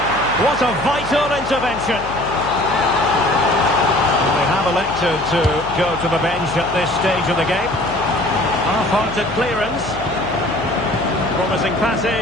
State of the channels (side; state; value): left; noise; hum, 15 dB below the sound